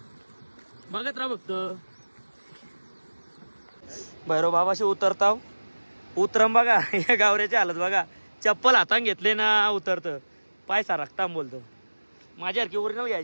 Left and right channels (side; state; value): both; inverted; correlation -1.00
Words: बघत राहा फक्त. भैरव बाबाशी उतरताव. उतरम बघा. या गावऱ्याची हालत बघा. चप्पल हातान घेतले ना उतरतं. पाय सारखता बोलतो. माझ्यासारखी ओरिजिनल